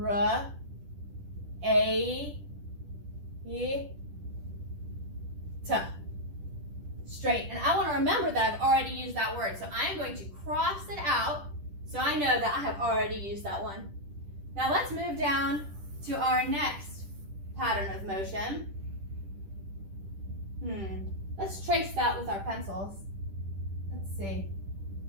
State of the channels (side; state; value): left; late; 10 ms